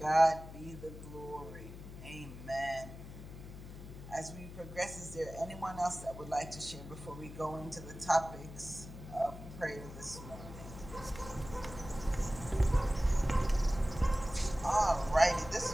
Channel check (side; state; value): left; noise; hum, 13 dB below the sound